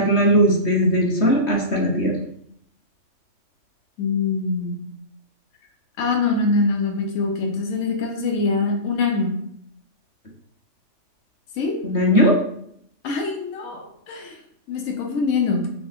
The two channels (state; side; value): late; right; 3.2 ms